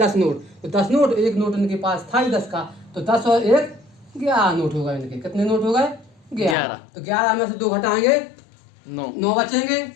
नोट, तो 10 नोट, 1 नोट इनके पास था ही 10 का, तो 10 और 1 11 नोट हो गए इनके, कितने नोट हो गए, 11। तो 11 में से 2 घटाएंगे, 9 बचेंगे,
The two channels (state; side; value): drops out; right; at 6.6 s